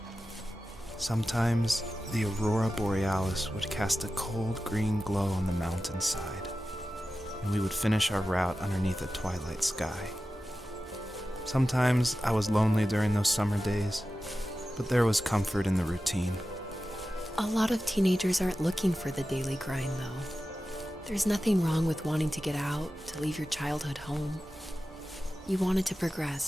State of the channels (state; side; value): normal; both; correlation 0.94